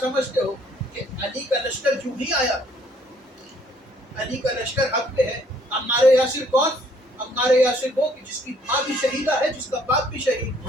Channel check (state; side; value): normal; both; correlation 0.63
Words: سمجھتے ہو کہ علی کا لشکر جو ہی آیا؟ علی کا لشکر حق پہ ہے. عمار یاسر کون؟ عمار یاسر وہ کہ جس کی ماں بھی شہیدہ ہے، جس کا باپ بھی شہید.